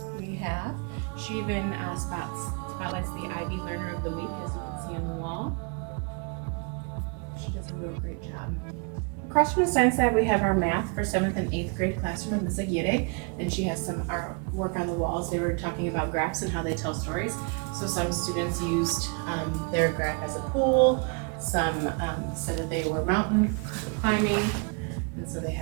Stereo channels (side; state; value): left; quieter; 33.7 dB